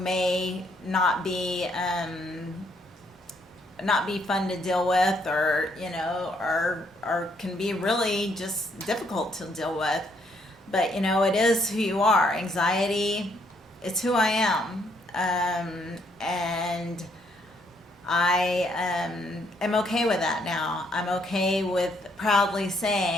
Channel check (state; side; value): normal; both; correlation 0.71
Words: may not be fun to deal with, or or can be really just difficult to deal with. But it is who you are. Anxiety, it's who I am. And I am okay with that now. I'm okay with proudly